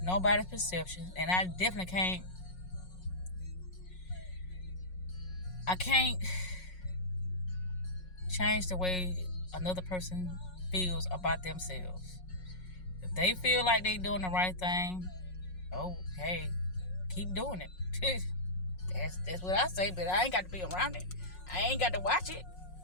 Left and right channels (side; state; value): right; late; 5.5 ms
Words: nobody's perception. And I definitely can't. I can't change the way another person feels about themselves. If they feel like they doing the right thing, oh, hey, keep doing it. That's what I say, but I ain't got to be around it. I ain't got to watch it.